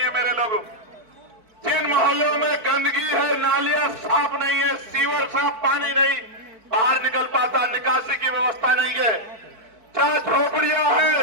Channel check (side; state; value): left; late; 4.5 ms